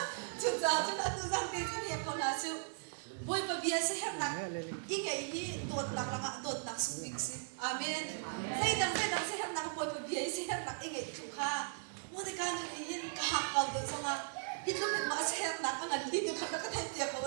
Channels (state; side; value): silent; left; 53 dB below the other